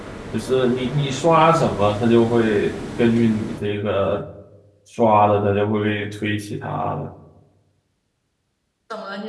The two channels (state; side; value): identical; both; correlation 1.00